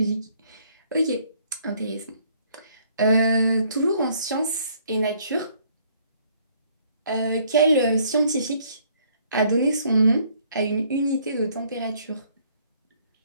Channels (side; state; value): both; inverted; correlation -0.63